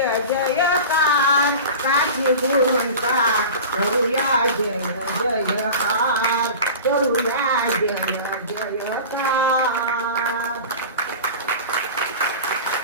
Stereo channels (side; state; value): both; inverted; correlation -0.34